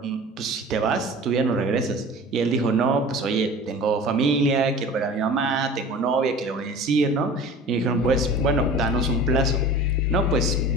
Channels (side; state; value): both; normal; correlation 0.39